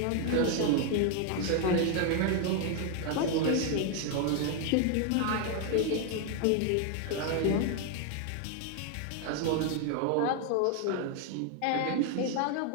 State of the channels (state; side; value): different; both; correlation 0.01